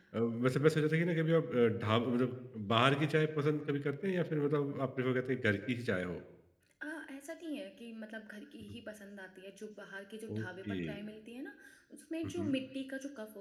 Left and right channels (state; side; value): identical; both; correlation 1.00